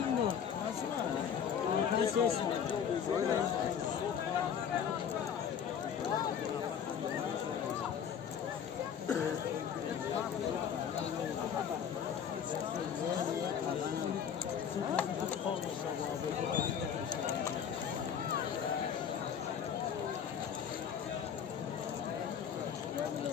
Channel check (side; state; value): right; quieter; 8.0 dB